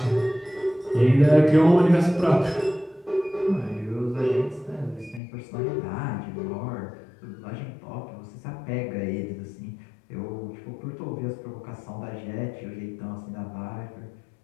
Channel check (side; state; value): right; drops out; at 5.2 s